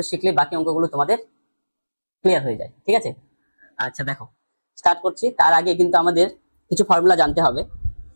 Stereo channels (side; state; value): both; inverted; correlation -1.00